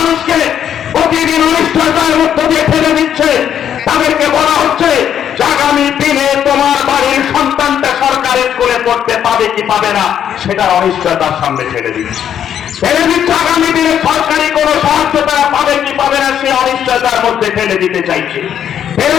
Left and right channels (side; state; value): right; quieter; 9.4 dB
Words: প্রতিদিন অনিশ্চয়তার মধ্য দিয়ে ফেলে দিচ্ছে। তাদেরকে বলা হচ্ছে যে আগামী দিনে তোমার বাড়ির সন্তানটা সরকারি স্কুলে পড়তে পাবে কি পাবে না, সেটার অনিশ্চয়তার সামনে ফেলে দিচ্ছে। আগামী দিনে সরকারি কোনো সাহায্য তারা পাবে কি পাবে না, সে অনিশ্চয়তার মধ্যে ফেলে দিতে চাইছে।